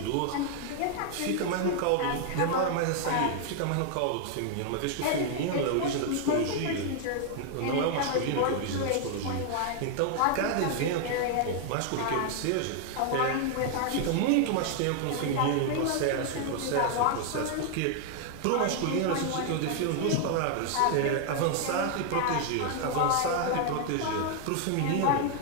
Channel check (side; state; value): both; different; correlation 0.00